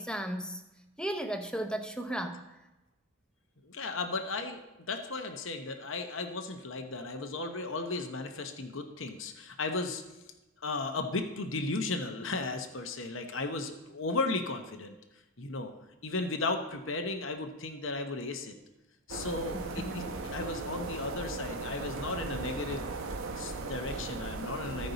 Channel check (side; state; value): both; normal; correlation 0.11